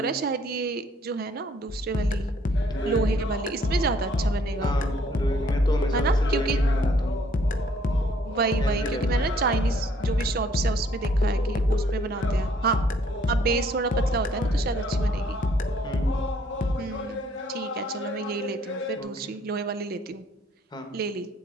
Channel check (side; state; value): both; normal; correlation 0.63